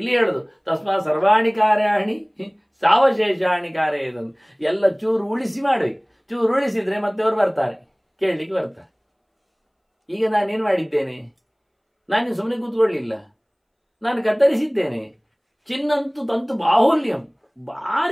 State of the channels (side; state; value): both; identical; correlation 1.00